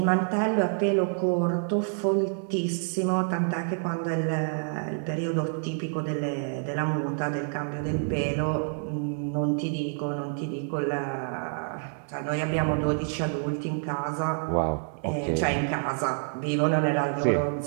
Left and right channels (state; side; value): silent; left; 60 dB below the other